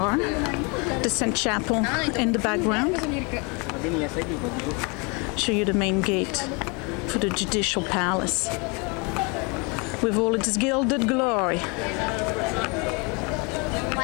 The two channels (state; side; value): quieter; right; 31.2 dB